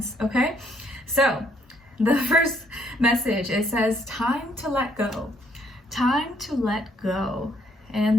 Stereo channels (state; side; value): normal; both; correlation 0.68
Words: okay? So the first message, it says, time to let go. Time to let go. And